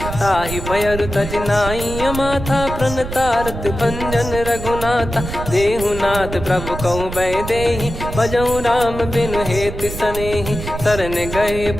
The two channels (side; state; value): right; noise; rumble, 7 dB below the sound